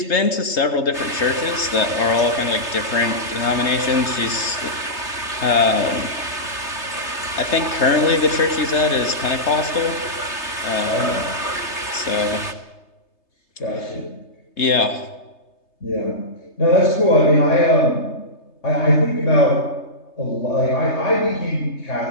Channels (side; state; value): right; late; 3.3 ms